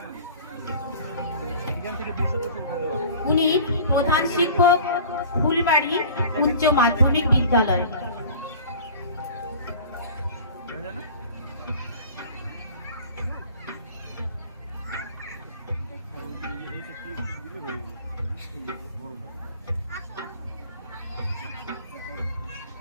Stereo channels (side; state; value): both; inverted; correlation -0.43